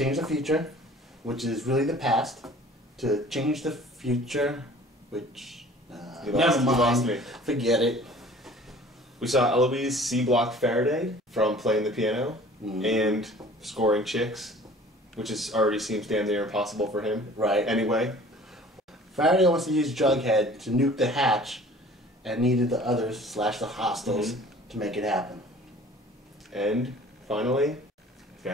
the future, which is really the past, to change the future, which... never mind. Lost me. Forget it. We saw Eloise C-block Faraday from playing the piano and scoring chicks, which already seems damn near impossible for him. Right. Anyway. Faraday wants to use Jughead to nuke the hatch and needed the others / the hostiles to make it happen. And finally,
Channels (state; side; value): normal; both; correlation 0.48